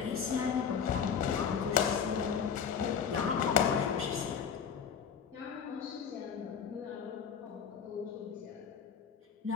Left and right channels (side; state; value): right; quieter; 7.2 dB